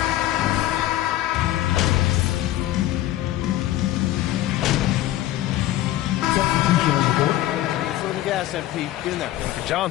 Gas, MP. Get in there. And for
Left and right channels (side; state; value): right; quieter; 14.6 dB